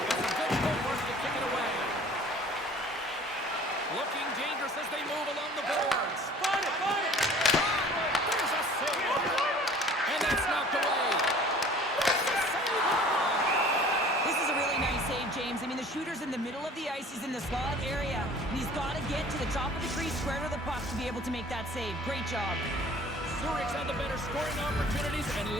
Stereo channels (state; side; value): normal; both; correlation 0.48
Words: a good footwork to kick it away. Looking dangerous as they move along the boards. Find it! There's a save. And that's knocked away. This is a really nice save, James. I mean, the shooter's in the middle of the ice. He's in the slot area, and he's got to get to the top of the crease square to the puck to be able to make that save. Great job. Zurich's had the better scoring opportunities, and